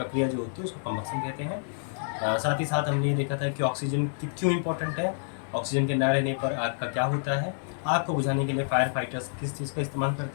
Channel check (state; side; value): silent; right; 59 dB below the other